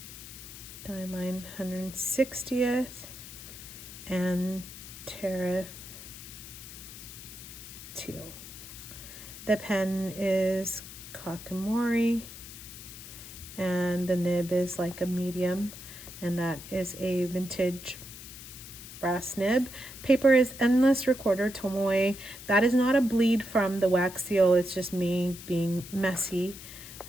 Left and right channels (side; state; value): left; noise; hiss, 14 dB below the sound